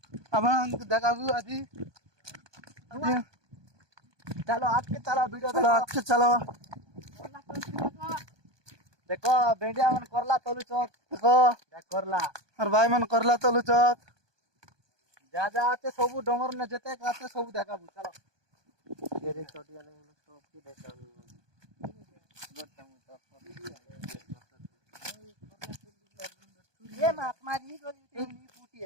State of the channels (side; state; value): left; late; 1.2 ms